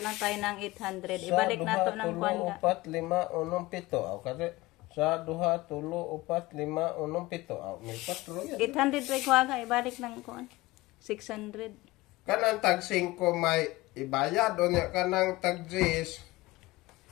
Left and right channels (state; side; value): quieter; right; 19.9 dB